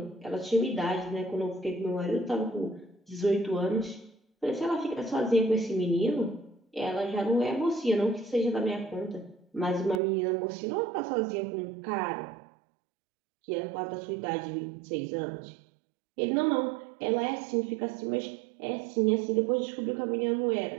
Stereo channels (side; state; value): left; drops out; at 10.0 s